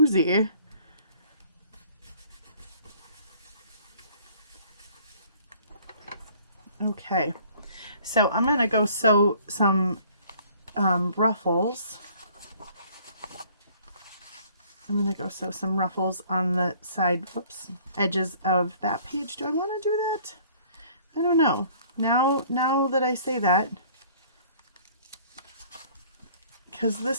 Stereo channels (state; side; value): inverted; both; correlation -0.55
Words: Okay, so I'm going to go sew some ruffles. I'm going to go sew some ruffles on the side, whoops, edges of that page. Do I want to do that? I don't know. Now that I say that, because